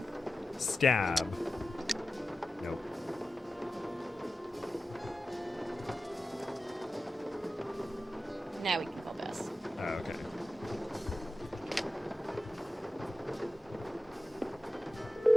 Stab. Nope. Now we can call Bess. Oh, okay.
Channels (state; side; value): normal; both; correlation 0.94